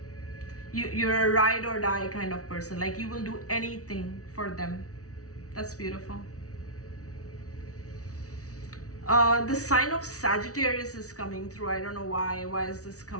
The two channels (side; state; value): right; late; 0.66 ms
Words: You're a ride or die kind of person. Like, you will do anything for them. That's beautiful. The sign of Sagittarius is coming through. I don't know why. Why is this